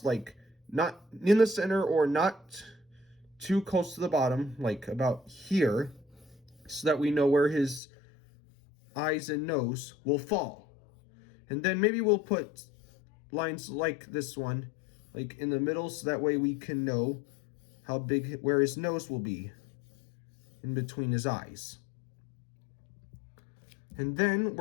like not in the center or not too close to the bottom, like about here, so that we know where his eyes and nose will fall. And then maybe we'll put lines like this one, like in the middle, so that way we can know how big, where his nose will be in between his eyes. And then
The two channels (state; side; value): drops out; right; at 7.8 s